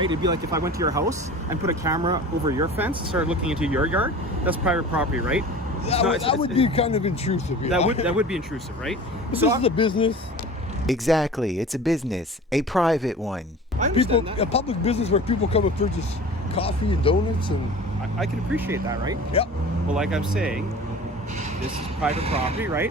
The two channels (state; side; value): normal; both; correlation 0.39